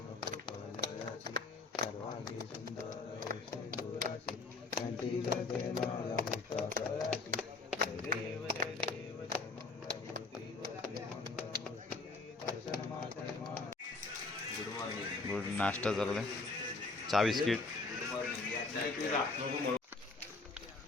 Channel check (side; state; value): right; quieter; 3.8 dB